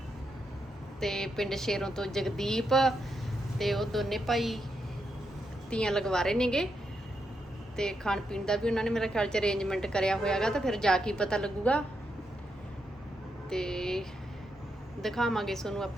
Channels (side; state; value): both; normal; correlation 0.82